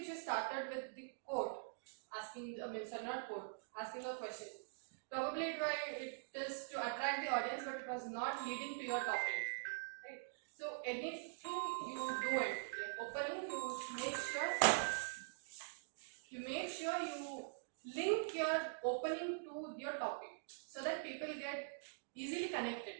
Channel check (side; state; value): left; silent; digital silence